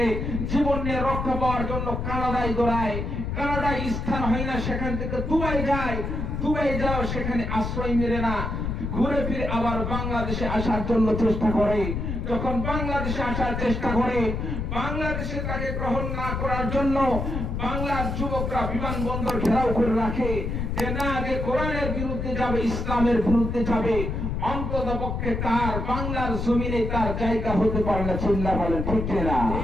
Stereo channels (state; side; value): noise; left; rumble, 3 dB below the sound